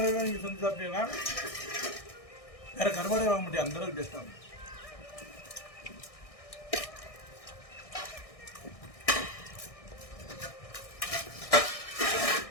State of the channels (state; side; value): late; right; 1.6 ms